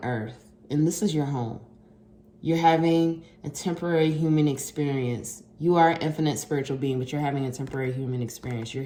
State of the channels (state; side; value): identical; both; correlation 1.00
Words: Earth, and this is your home. You're having a temporary human experience. You are an infinite spiritual being, but you're having a temporary human experience. You're